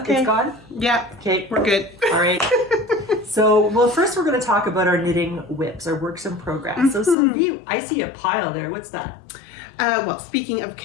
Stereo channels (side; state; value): right; drops out; at 7.2 s